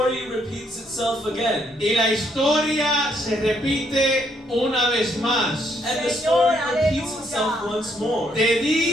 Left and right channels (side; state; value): both; normal; correlation 0.71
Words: repeats itself again. Y la historia se repite una vez más. And the story repeats itself once more. De